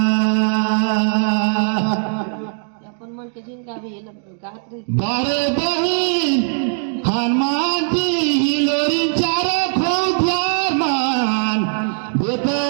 अपन मन के जिनका भी ये लोग गात रहे बारे बहिन हनुमान जी हिलोरी चारो खूब प्यार मान देते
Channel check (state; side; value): silent; left; 64 dB below the other